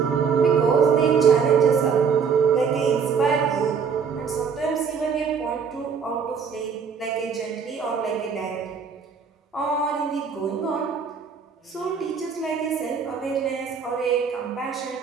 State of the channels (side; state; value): left; quieter; 6.2 dB